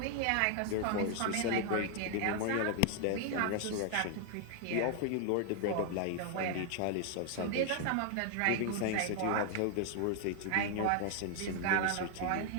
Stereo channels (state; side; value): different; both; correlation 0.00